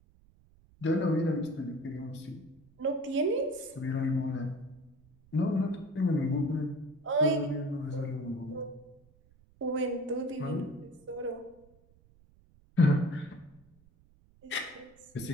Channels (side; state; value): right; noise; rumble, 29 dB below the sound